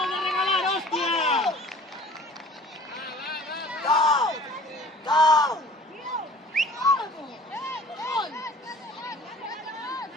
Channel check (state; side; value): normal; both; correlation 0.48